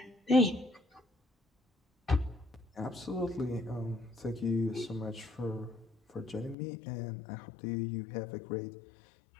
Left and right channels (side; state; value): right; drops out; at 6.6 s